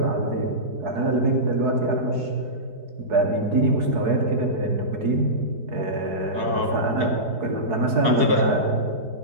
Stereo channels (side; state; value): left; late; 4.7 ms